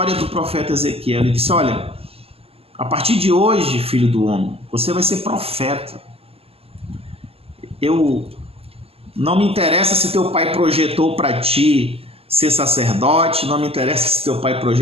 do profeta Ezequiel. Ele disse: olha, a partir de hoje, filho do homem, você vai ser profeta. Não me interessa se teu pai projetou para ti ser sacerdote, não me interessa se teu pai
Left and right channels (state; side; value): late; left; 0.28 ms